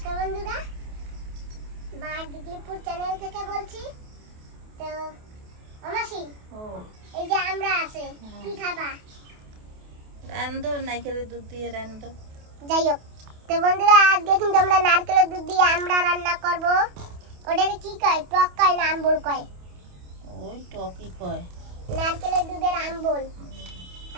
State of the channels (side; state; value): left; late; 28 ms